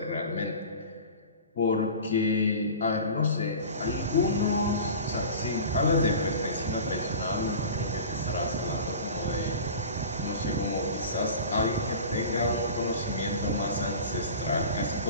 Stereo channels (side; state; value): both; inverted; correlation -0.37